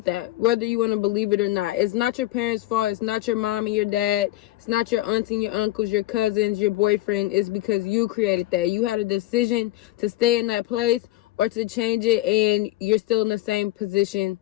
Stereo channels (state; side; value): quieter; right; 16.3 dB